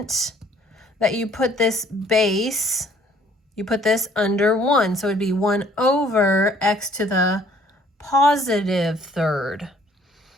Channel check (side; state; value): both; normal; correlation 0.59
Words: that you put this base, you put this under 1. So it would be 1 over x to the positive third.